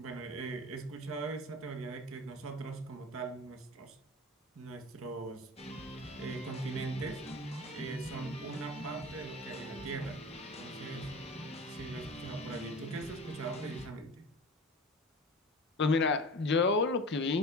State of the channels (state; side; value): normal; both; correlation 0.34